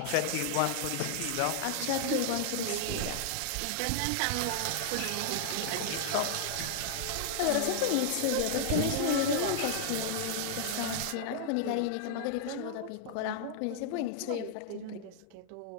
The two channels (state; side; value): different; both; correlation -0.01